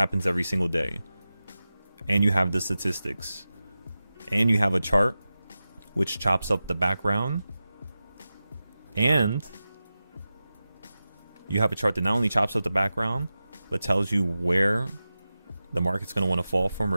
every single day, and you have the statistics, and you have a chart which chops up the background, and you have a chart that not only chops up the background, but tells you where the market's going to want to fall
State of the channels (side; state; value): both; inverted; correlation -0.94